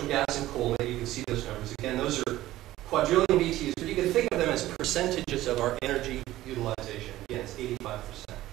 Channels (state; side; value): quieter; left; 15.5 dB